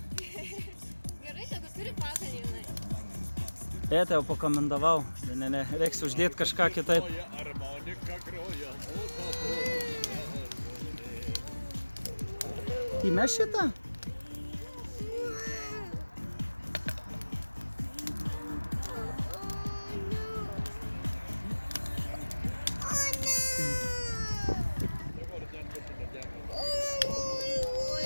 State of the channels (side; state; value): both; inverted; correlation -1.00